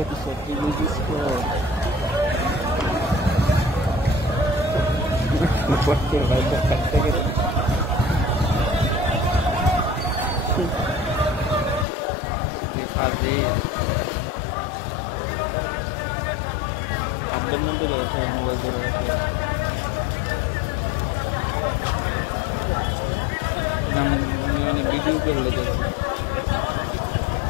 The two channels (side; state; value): right; drops out; at 11.9 s